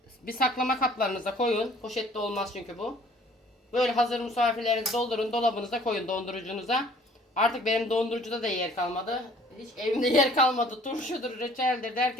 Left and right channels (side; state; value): both; normal; correlation 0.55